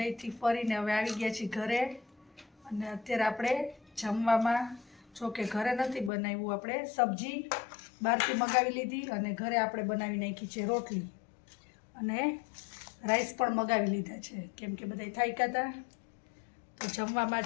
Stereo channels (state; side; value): drops out; right; at 6.1 s